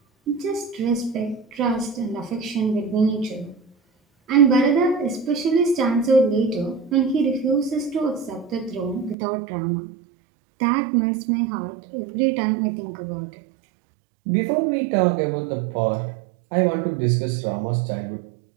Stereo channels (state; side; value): drops out; left; at 9.2 s